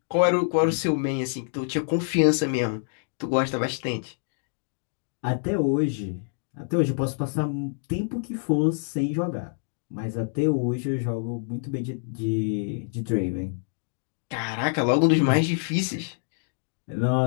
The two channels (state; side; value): silent; right; digital silence